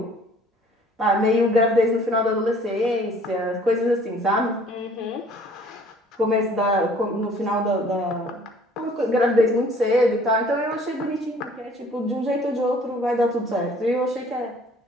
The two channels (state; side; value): normal; both; correlation 0.54